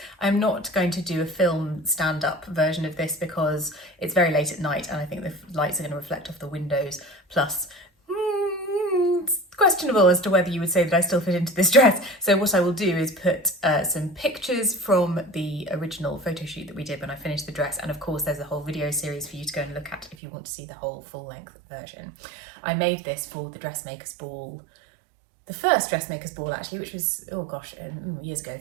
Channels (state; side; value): drops out; left; at 20.2 s